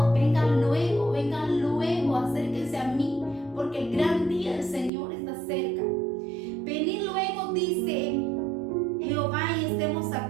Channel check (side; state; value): left; drops out; at 4.9 s